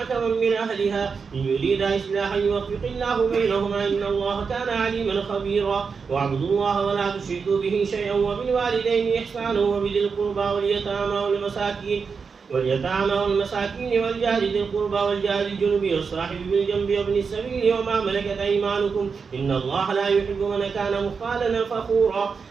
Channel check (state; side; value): quieter; left; 5.4 dB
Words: من أهلها إن يريد إصلاحا يوفق الله بينهما إن الله كان عليما خبيرا واعبدوا الله ولا تشركوا به شيئا وبالوالدين إحسانا وبذي القربى واليتامى والمساكين والجار ذي القربى والجار الجنب والصاحب بالجنب وابن السبيل وما ملكت أيمانكم إن الله لا يحب من كان مختالا فخورا